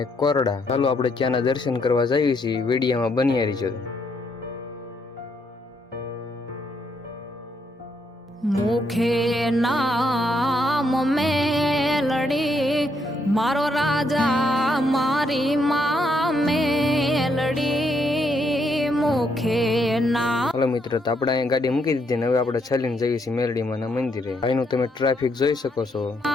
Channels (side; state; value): both; normal; correlation 0.75